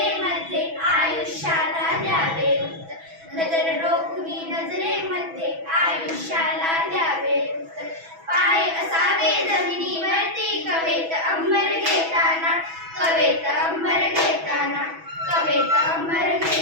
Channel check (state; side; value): late; left; 6.1 ms